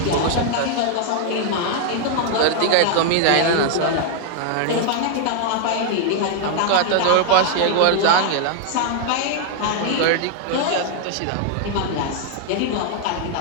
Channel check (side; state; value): both; different; correlation 0.00